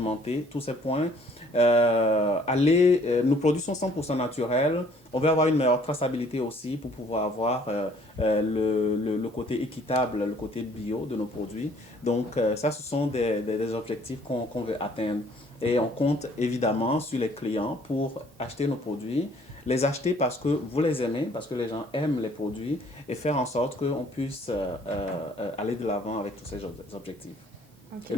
tous ces points. Nos produits sont 100% naturels. On veut avoir une meilleure traçabilité aussi pour pouvoir avoir le côté équitable, le côté bio de nos produits. Donc, ça, ce sont des objectifs qu'on veut atteindre. Et on compte évidemment sur les clients pour acheter nos produits, les acheter parce que vous les aimez, parce que les gens aiment les produits et faire en sorte qu'on puisse aller de l'avant avec tous ces objectifs. Okay. Et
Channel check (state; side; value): normal; both; correlation 0.59